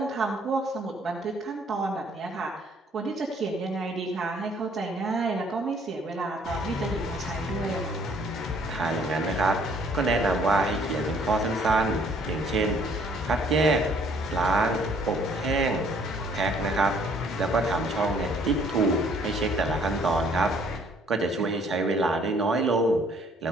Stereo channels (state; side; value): normal; both; correlation 0.61